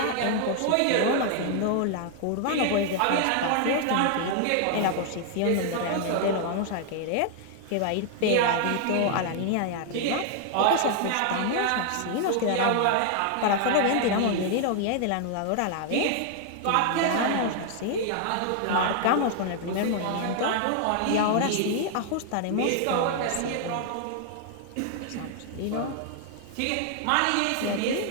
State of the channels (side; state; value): both; different; correlation 0.00